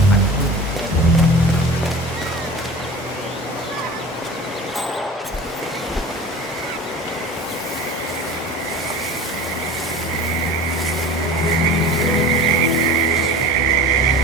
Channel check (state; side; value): normal; both; correlation 0.37